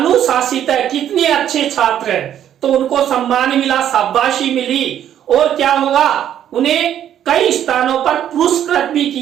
है, कितने अच्छे छात्र हैं। तो उनको सम्मान मिला, शाबाशी मिली और क्या होगा, उन्हें कई स्थानों पर पुरस्कृत भी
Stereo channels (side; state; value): left; quieter; 10.4 dB